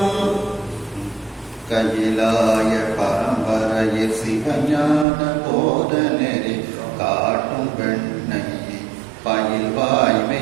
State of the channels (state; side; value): drops out; left; at 5.1 s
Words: கையிலாய பரம்பரையில் சிவஞான போதனரை காட்டும் பெண்ணை பயில்